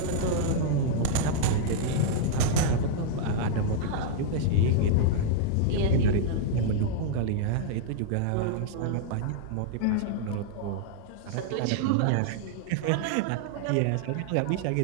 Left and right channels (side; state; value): both; different; correlation -0.01